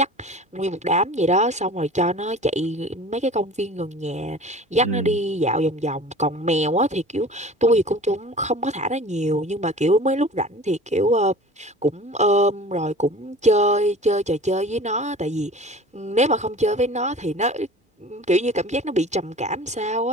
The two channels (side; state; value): both; normal; correlation 0.41